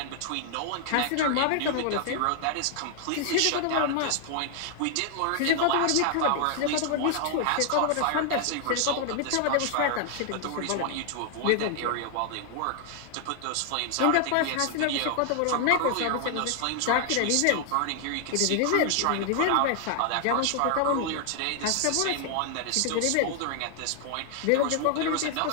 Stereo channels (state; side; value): different; both; correlation 0.00